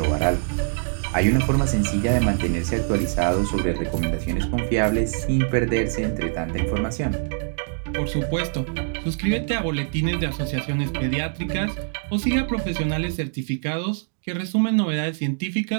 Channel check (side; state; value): left; silent; digital silence